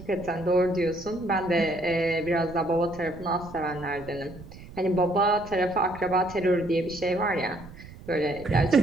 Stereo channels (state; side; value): noise; right; rumble, 17 dB below the sound